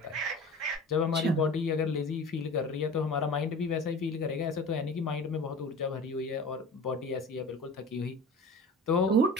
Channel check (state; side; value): normal; both; correlation 0.38